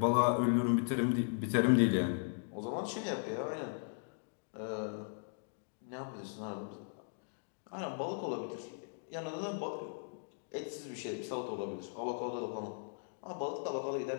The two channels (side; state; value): right; silent; digital silence